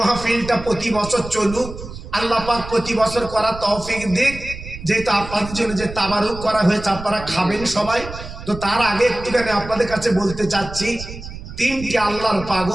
প্রতি বছর চলুক, আল্লাহ পাক প্রতি বছর করার তৌফিক দিক। যেহেতু আপনাদের জন্য যে তাবারুক করা হয়েছে, আপনারা খাবেন সবাই, তো তার আগে একটুখানি আপনাদের কাছে বলতে চাচ্ছি, 3টি আল্লাহর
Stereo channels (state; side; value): noise; right; rumble, 12 dB below the sound